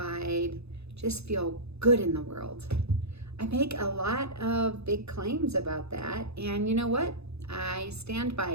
just feel good in the world? I make a lot of big claims about that, and you know what? I stand by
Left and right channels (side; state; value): left; late; 0.79 ms